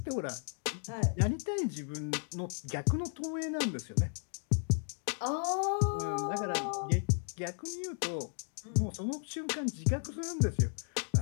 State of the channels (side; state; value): right; silent; 55 dB below the other